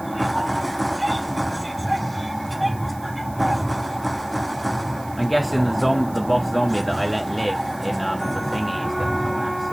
please I'm guessing the boss zombie that I let live in the thingy is going to come back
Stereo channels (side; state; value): right; noise; hiss, 21 dB below the sound